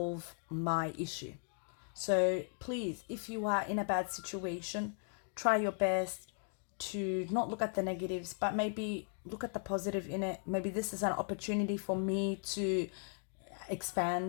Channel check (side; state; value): right; silent; 53 dB below the other